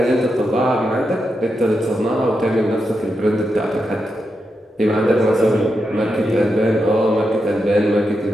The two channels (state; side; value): normal; both; correlation 0.86